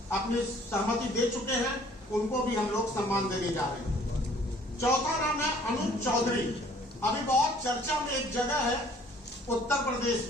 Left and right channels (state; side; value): normal; both; correlation 0.57